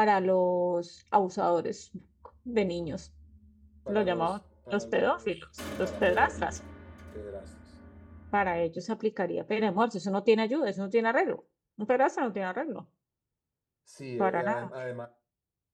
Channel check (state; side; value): identical; both; correlation 1.00